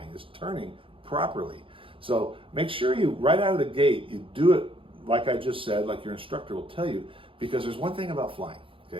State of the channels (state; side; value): late; left; 0.26 ms